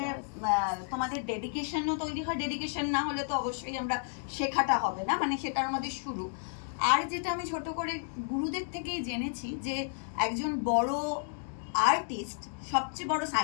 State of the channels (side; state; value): right; silent; digital silence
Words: তোমাদের ডেডিকেশনও তৈরি হয়। ডেডিকেশন না হলে তো অবশ্যই আমরা শেখাটা হবে না, মানে সেটা আমাদের শুরু। আর যেটা আমি ছোট করে গুরুদের থেকেই জেনেছি যে একজন বড় আর্টিস্ট সবচেয়ে বড়